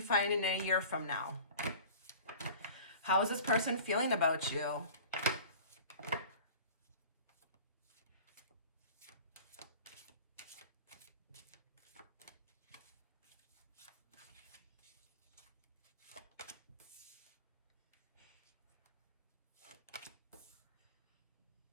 find it in a year from now. How is this person feeling about you?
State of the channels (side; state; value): both; inverted; correlation -0.42